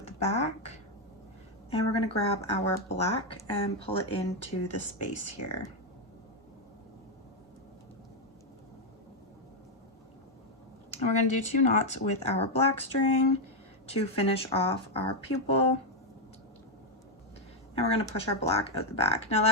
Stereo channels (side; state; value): both; normal; correlation 0.02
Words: the back, and we're going to grab our black and pull it into the space here. And we're going to do 2 knots with our black string to finish off our pupil. And we're going to push our black out the back. Now